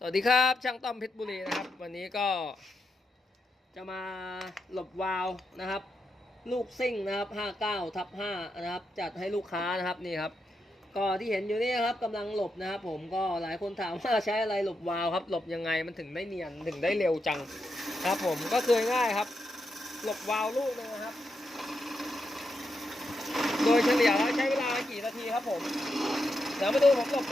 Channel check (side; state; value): both; normal; correlation 0.84